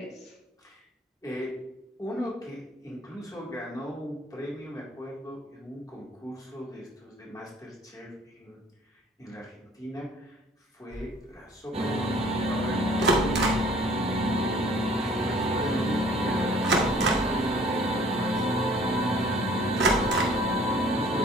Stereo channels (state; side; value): normal; both; correlation 0.54